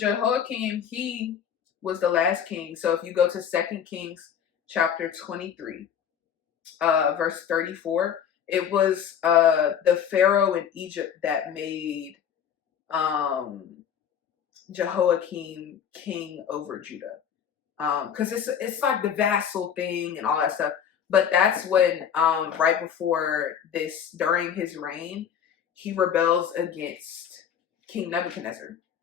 he was the last king. So if you go to 2 Kings chapter 23, verse 34, it was the Pharaoh in Egypt that made Jehoiakim king over Judah. Because it's like the vassal thing and all that stuff. But that's when, right before this, during his reign, he rebels against King Nebuchadnezzar.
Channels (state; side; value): quieter; right; 8.3 dB